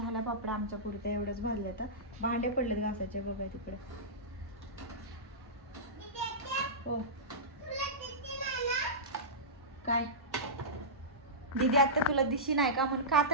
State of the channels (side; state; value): both; normal; correlation -0.16